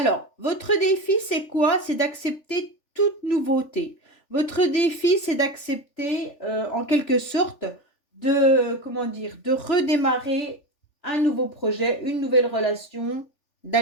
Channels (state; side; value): late; right; 3.4 ms